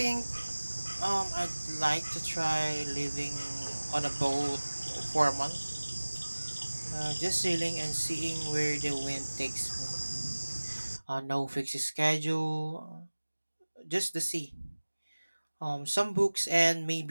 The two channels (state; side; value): inverted; both; correlation -1.00